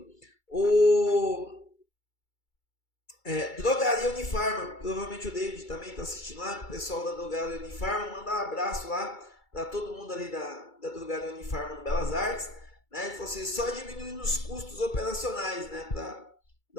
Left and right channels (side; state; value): right; late; 2.3 ms